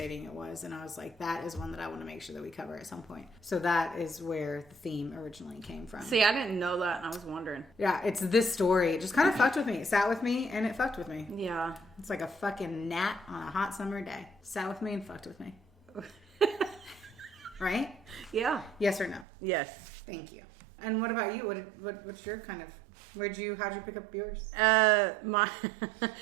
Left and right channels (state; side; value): drops out; left; at 19.2 s